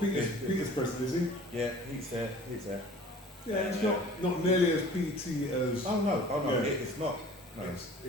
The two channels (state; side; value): normal; both; correlation 0.46